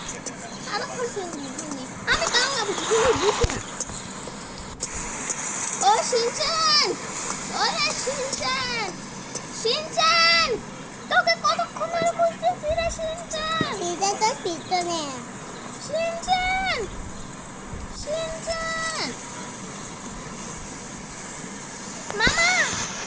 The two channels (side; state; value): both; identical; correlation 1.00